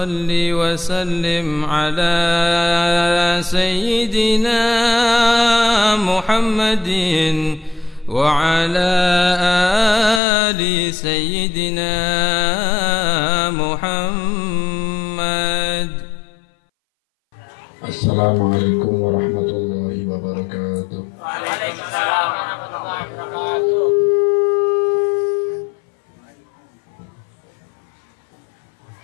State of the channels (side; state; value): right; drops out; at 10.2 s